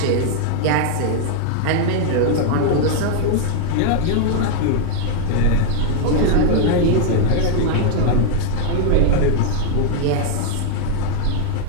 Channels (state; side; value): different; both; correlation 0.00